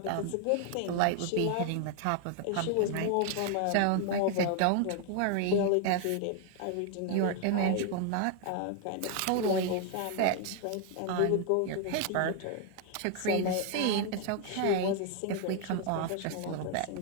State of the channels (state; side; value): different; both; correlation 0.00